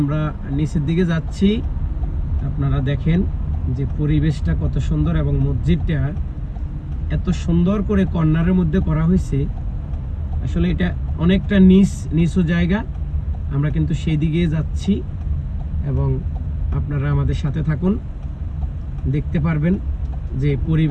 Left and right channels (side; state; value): both; identical; correlation 1.00